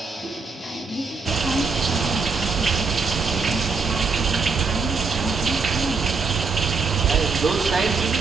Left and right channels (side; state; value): left; quieter; 4.7 dB